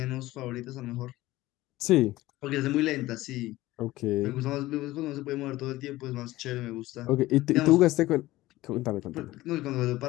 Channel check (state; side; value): quieter; right; 17.4 dB